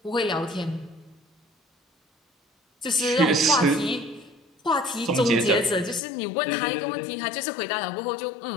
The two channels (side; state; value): right; drops out; at 6.0 s